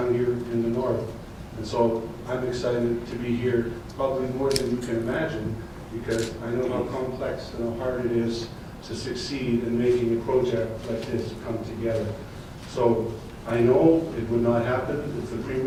here in the north. And so I'm excited to be here, probably more than you can imagine, because I know how complex and how hard it is to succeed in making a project like this come together. So I know it would not happen if the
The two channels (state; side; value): identical; both; correlation 1.00